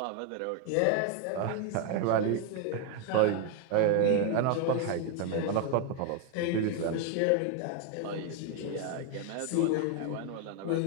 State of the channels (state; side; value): different; both; correlation 0.01